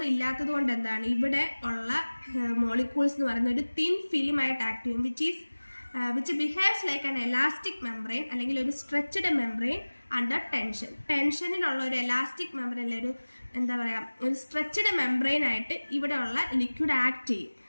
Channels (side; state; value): both; inverted; correlation -1.00